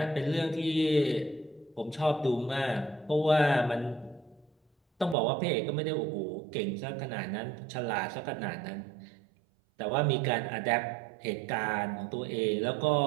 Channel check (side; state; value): left; drops out; at 5.2 s